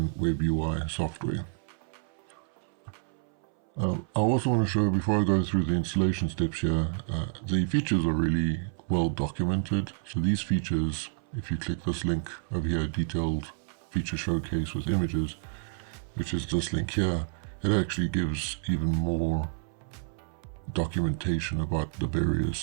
web UI software. I also want to show, before I go through the installation steps here, the features are really well documented. So these features, if you click this link over here, detailed feature showcase with images, which is this link here, it actually gives even more documentation about the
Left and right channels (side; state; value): left; silent; 58 dB below the other